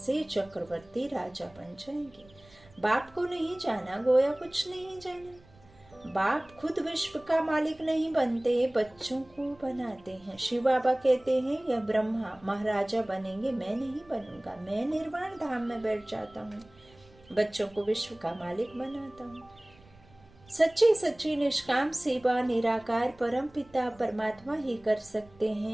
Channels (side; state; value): right; noise; rumble, 27 dB below the sound